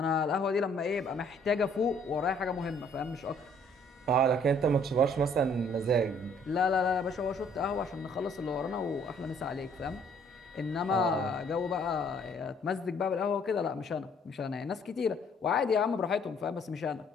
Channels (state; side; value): normal; both; correlation 0.61